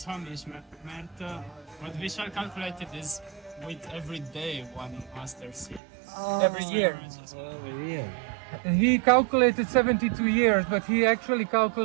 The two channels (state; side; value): drops out; left; at 5.8 s